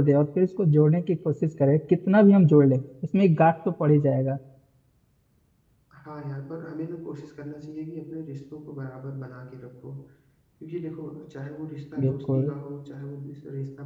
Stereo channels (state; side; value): identical; both; correlation 1.00